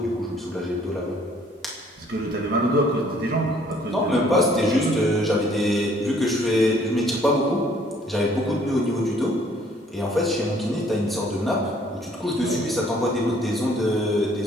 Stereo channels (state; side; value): normal; both; correlation 0.60